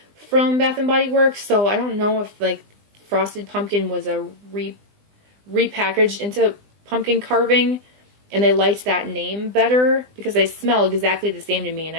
from Bath & Body Works, so I don't know if like Frosted Pumpkin was a repackaged into pumpkin carving, and they liked that name better because they smell exactly the same to me, and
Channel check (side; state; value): left; late; 20 ms